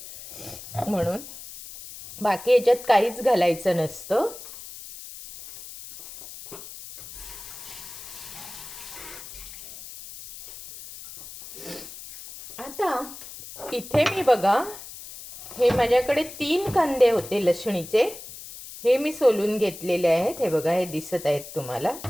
म्हणून. बाकी याच्यात काहीच घालायचं नसतं. आता इथे मी बघा, हे माझ्याकडे 3 कांदे होते लसणीचे, हे मी सोलून घेतलेले आहेत. हे बघा, हे दिसत आहेत तुम्हाला.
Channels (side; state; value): left; noise; hiss, 14 dB below the sound